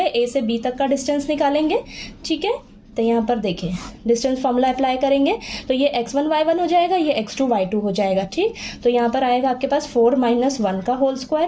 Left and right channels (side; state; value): both; identical; correlation 1.00